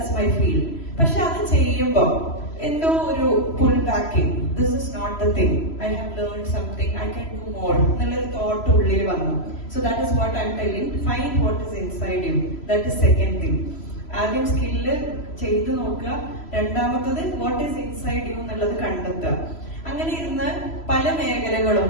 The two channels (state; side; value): late; right; 3.0 ms